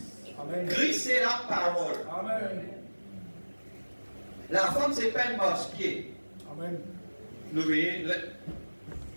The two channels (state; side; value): inverted; both; correlation -1.00